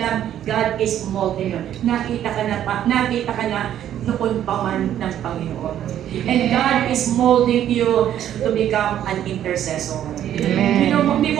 God is molding you. Nakita ka na noon pa man ng Panginoon. And God is molding you to become an intercessor. Amen. Hindi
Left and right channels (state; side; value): quieter; left; 11.0 dB